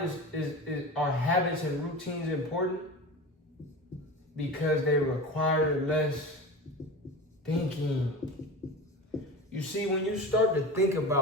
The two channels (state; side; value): normal; both; correlation 0.30